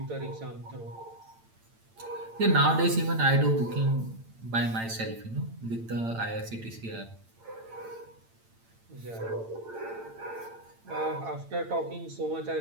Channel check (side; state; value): left; late; 8.8 ms